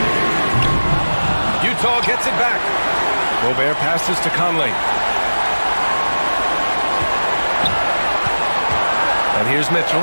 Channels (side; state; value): both; inverted; correlation -1.00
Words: Utah gets it back. Gobert passes to Conley. And here's Mitchell.